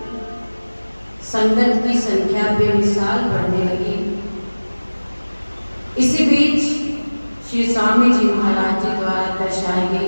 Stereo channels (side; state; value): both; inverted; correlation -1.00